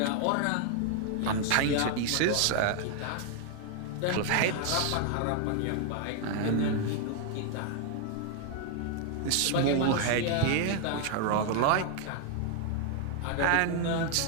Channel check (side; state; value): both; different; correlation 0.00